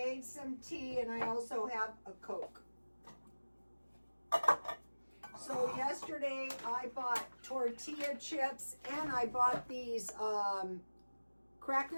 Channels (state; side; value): inverted; both; correlation -1.00